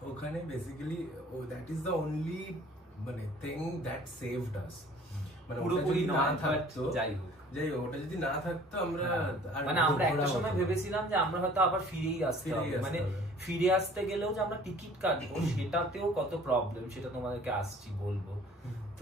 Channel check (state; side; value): normal; both; correlation 0.51